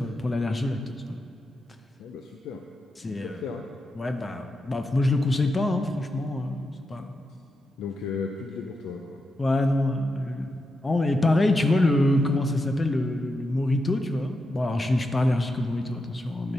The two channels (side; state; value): both; normal; correlation 0.86